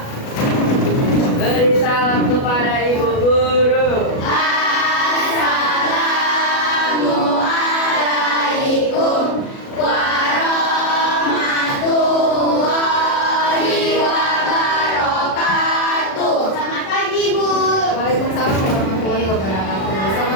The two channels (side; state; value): right; late; 37 ms